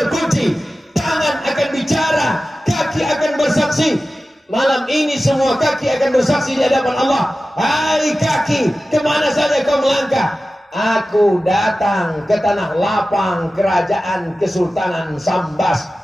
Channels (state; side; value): normal; both; correlation 0.95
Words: tangan akan bicara, kaki akan bersaksi. Malam ini semua kaki akan bersaksi di hadapan Allah. Hai kaki, kemana saja kau melangkah? Aku datang ke tanah lapang kerajaan Kesultanan Sambas.